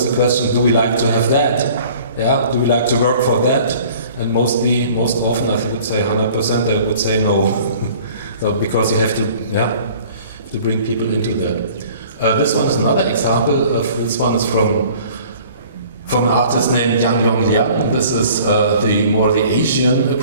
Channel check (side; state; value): both; inverted; correlation -0.50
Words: the question: do we like to have that? Yeah? Do we like to work for that? And most often, I would say 100%, they would say no. So because you have to bring people into that. This one is another example. This one is from an artist named Yang Yong Liang. This is the Asian